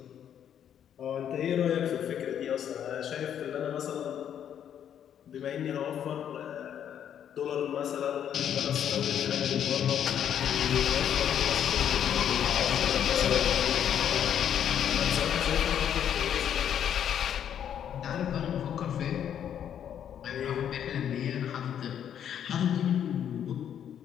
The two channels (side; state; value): right; quieter; 9.4 dB